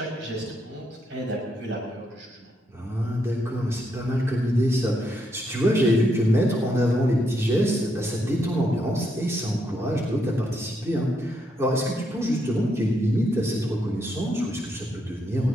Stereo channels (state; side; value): normal; both; correlation 0.78